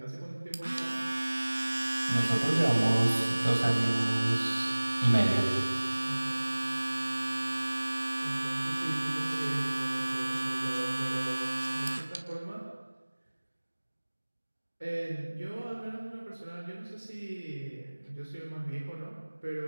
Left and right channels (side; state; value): both; inverted; correlation -1.00